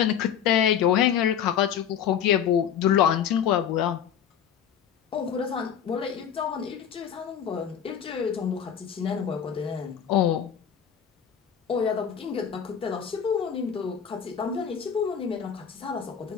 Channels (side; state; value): right; quieter; 8.5 dB